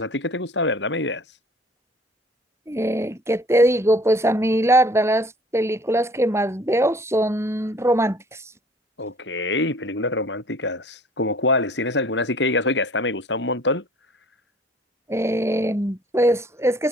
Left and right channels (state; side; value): normal; both; correlation 0.53